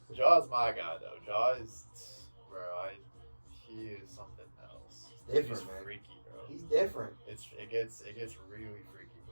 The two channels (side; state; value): both; inverted; correlation -1.00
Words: Ja's my guy though. Ja is, bro. He is something else. He's different, He's man. freaky, bro. He's different. It gets really freaky